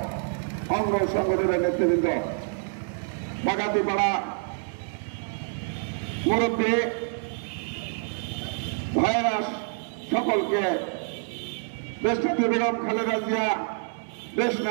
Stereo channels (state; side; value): silent; left; digital silence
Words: অঙ্গ সংগঠনের নেতৃবৃন্দ, বাগাতিপাড়া মুরব্বী ভাইয়েরা, সকলকে দেশনেত্রী বেগম খালেদা জিয়া, দেশ